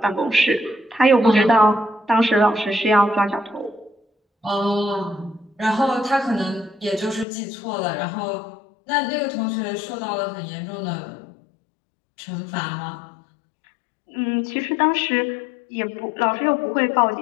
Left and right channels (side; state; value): right; drops out; at 7.2 s